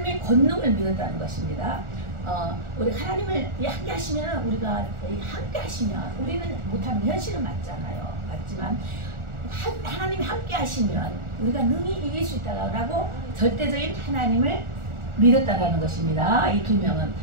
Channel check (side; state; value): left; late; 1.4 ms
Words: 권능을 믿었다는 것입니다. 우리 하나님을 함께 하시면 우리가 함께 하시면 우리는 못하는 현실은 맞지만 하나님이 함께 하시면 우리가 능히 이길 수 있다라고 절대적인 하나님을 믿었다라는 것입니다. 이 두 명은.